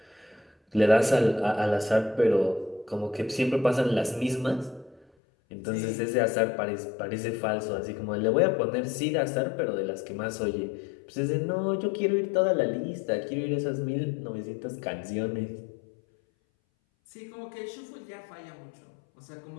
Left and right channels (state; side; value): drops out; right; at 5.1 s